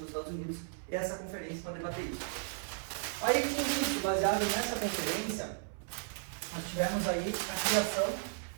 nos Estados Unidos. Essa conferência para debater isso. Aí, com isso, baseado nessa conferência, nós tivemos aí a criação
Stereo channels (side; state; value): left; silent; 54 dB below the other